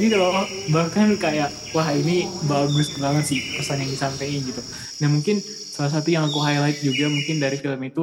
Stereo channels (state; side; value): identical; both; correlation 1.00